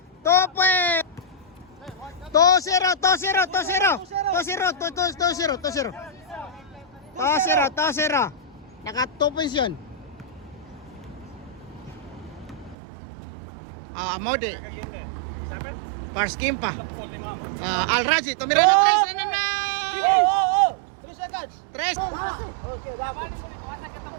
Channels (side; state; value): left; drops out; at 12.8 s